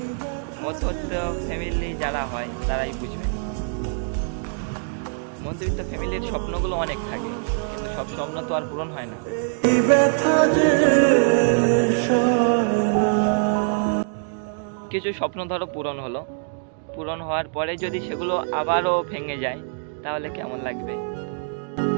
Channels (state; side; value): silent; left; digital silence